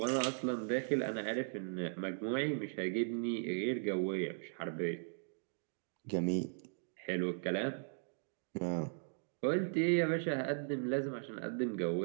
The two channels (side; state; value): left; silent; digital silence